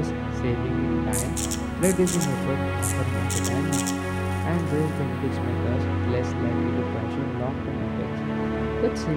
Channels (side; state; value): both; identical; correlation 1.00